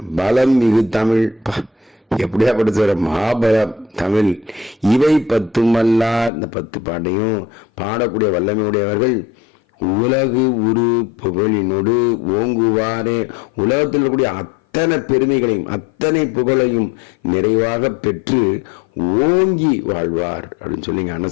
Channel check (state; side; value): drops out; right; at 6.3 s